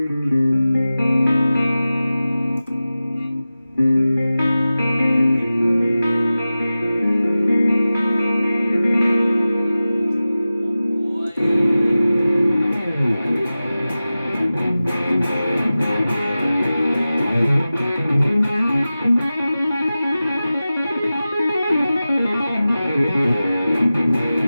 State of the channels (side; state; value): both; inverted; correlation -0.95